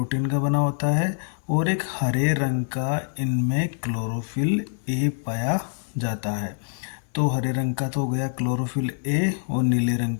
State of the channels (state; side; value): silent; right; digital silence